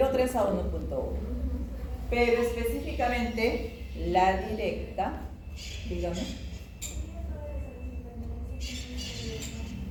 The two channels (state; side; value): identical; both; correlation 1.00